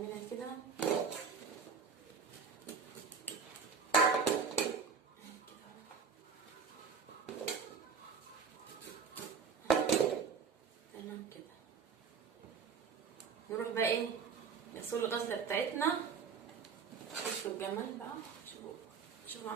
كده تمام كده. نروح بقى ايه نغسل الغسله بتاعتنا. شوفوا الجمال بقى، شوفوا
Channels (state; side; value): quieter; left; 6.1 dB